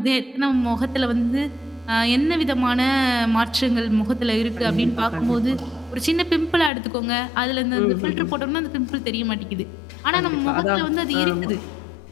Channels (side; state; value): right; drops out; at 6.7 s